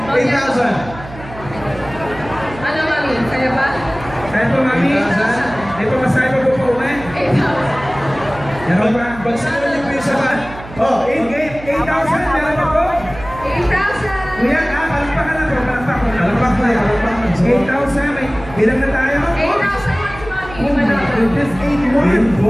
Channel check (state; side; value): noise; right; hum, 15 dB below the sound